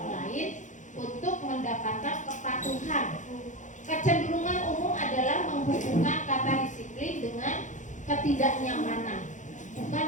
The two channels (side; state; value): right; late; 0.36 ms